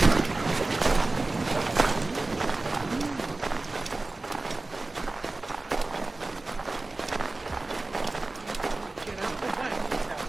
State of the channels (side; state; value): left; quieter; 3.1 dB